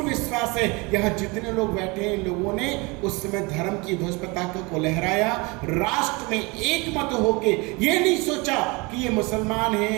विश्वास है यहाँ जितने लोग बैठे हैं, इन लोगों ने उस समय धर्म की ध्वज पताका को लहराया, राष्ट्र में एक मत होके। ये नहीं सोचा कि ये मुसलमान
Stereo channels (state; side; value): quieter; left; 27.0 dB